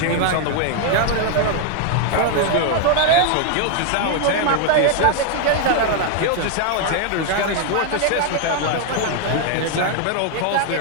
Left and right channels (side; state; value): both; different; correlation 0.00